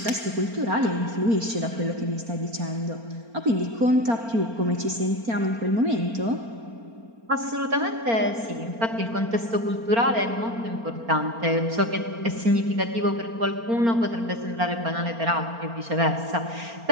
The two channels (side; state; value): left; late; 4.4 ms